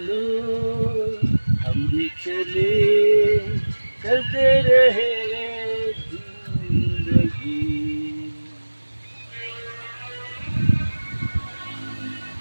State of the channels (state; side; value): inverted; both; correlation -1.00